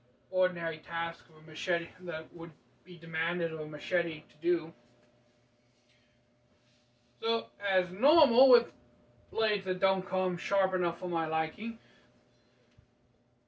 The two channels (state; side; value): identical; both; correlation 1.00